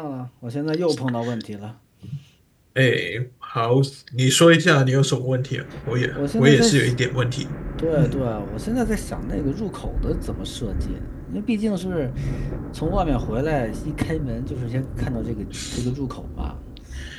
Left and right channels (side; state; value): both; identical; correlation 1.00